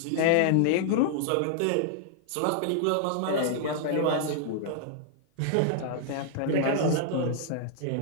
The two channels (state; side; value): different; both; correlation -0.01